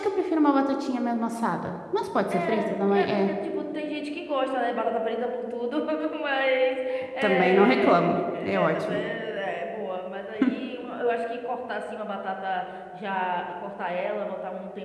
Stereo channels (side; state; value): both; identical; correlation 1.00